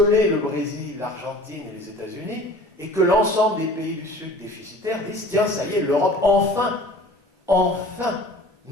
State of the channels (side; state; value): both; normal; correlation 0.44